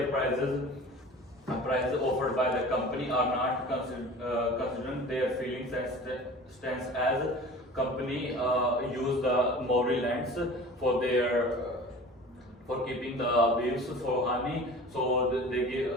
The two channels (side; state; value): both; normal; correlation 0.40